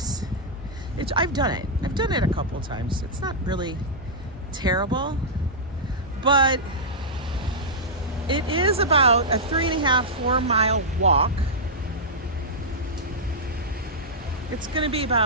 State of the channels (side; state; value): both; normal; correlation -0.10